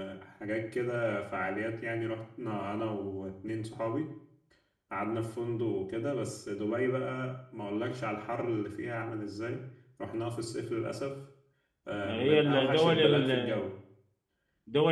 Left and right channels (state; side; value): identical; both; correlation 1.00